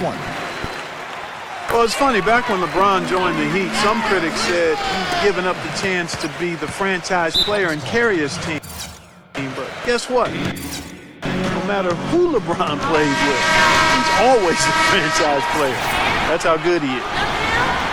one. Well, it's funny, back when LeBron joined the Heat, some critics said he'd given up the chance to be the franchise player and carry his team. But guess what? No matter who LeBron plays with, he's always a franchise player. That's how good he is.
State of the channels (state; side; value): identical; both; correlation 1.00